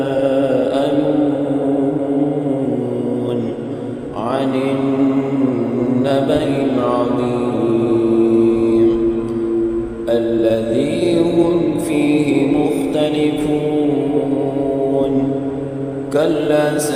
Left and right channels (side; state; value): both; identical; correlation 1.00